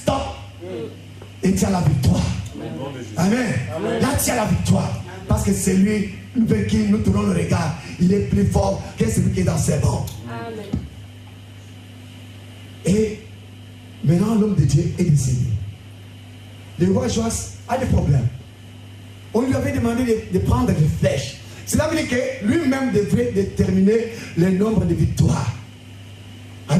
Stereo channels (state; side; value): identical; both; correlation 1.00